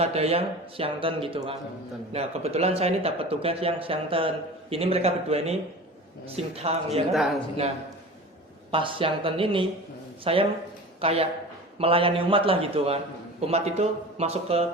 yang siangten gitu kan. Nah, kebetulan saya ini dapat tugas yang siangten. Ini mereka berdua ini sintang ya kan. Nah, pas siangten ini saya kayak melayani umat lah gitu kan. Umat itu masuk ke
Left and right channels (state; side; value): normal; both; correlation 0.36